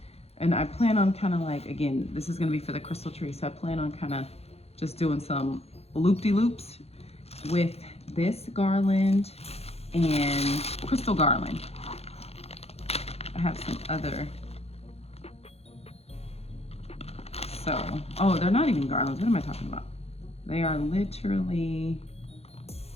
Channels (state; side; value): late; right; 0.30 ms